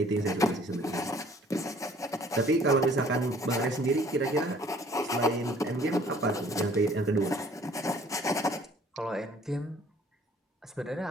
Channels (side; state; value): both; normal; correlation 0.56